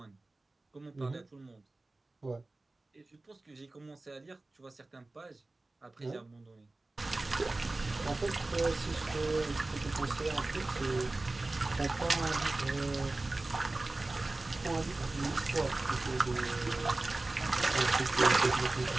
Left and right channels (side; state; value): left; quieter; 3.0 dB